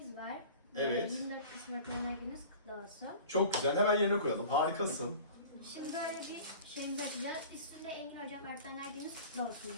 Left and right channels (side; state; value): both; inverted; correlation -0.41